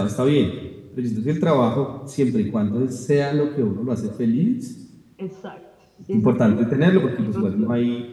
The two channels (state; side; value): identical; both; correlation 1.00